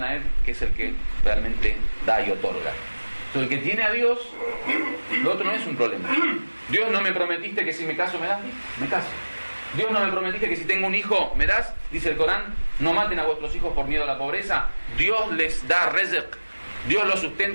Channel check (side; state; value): both; inverted; correlation -1.00